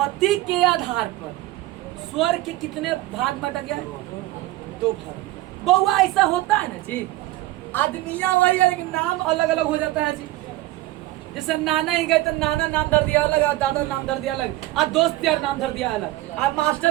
के आधार पर स्वर के कितने भाग बांटा गया है? दो भाग। बउआ ऐसा होता है ना जी, आदमिया वही है लेकिन नाम अलग अलग हो जाता है जी। जैसे नाना ही गए तो नाना नाम धर दिया अलग, दादा नाम धर दिया अलग, आ दोस्त यार नाम धर दिया अलग, आ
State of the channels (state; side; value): quieter; left; 17.3 dB